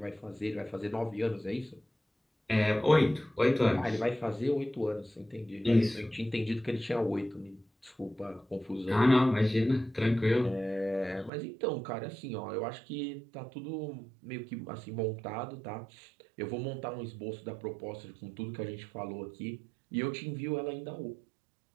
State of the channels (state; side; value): drops out; left; at 11.3 s